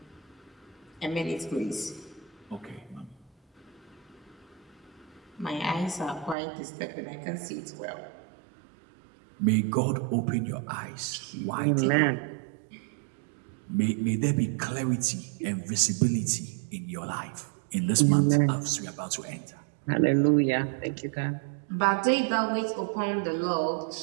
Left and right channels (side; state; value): left; drops out; at 6.4 s